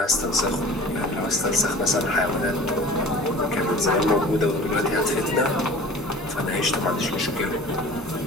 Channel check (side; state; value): both; normal; correlation 0.43